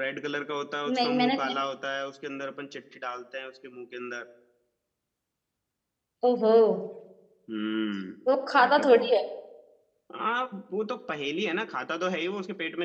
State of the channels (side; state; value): both; identical; correlation 1.00